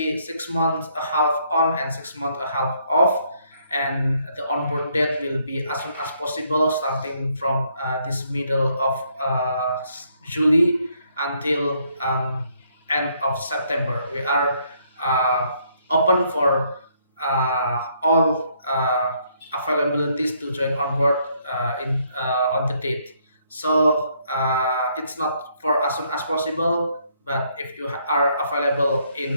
6 months a half on and 6 months a half off, and the onboard date will be as soon as possible, starting from this middle of July until end of September. We are open for all availabilities to join on board on the date. So it's not for as soon as possible, but if you are available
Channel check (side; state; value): both; inverted; correlation -0.70